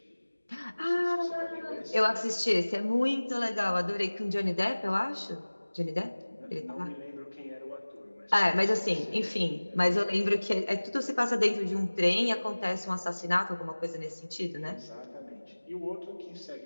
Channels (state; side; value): inverted; both; correlation -1.00